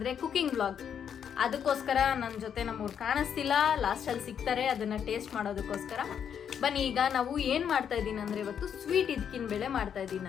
cooking vlog. ಅದಕ್ಕೋಸ್ಕರ ನನ್ನ ಜೊತೆ ನಮ್ಮವ್ರು ಕಾಣಿಸ್ತಿಲ್ಲ, ಲಾಸ್ಟಲ್ಲಿ ಸಿಗ್ತಾರೆ, ಅದನ್ನು ಟೇಸ್ಟ್ ಮಾಡೋದಕ್ಕೋಸ್ಕರ. ಬನ್ನಿ ಈಗ ನಾವು ಏನು ಮಾಡ್ತಾ ಇದ್ದೀನಿ ಅಂದರೆ ಇವತ್ತು ಸ್ವೀಟ್ ಇದಕ್ಕಿನ ಬೇಳೆ ಮಾಡ್ತಾ ಇದ್ದೀನಿ.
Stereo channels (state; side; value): quieter; right; 8.2 dB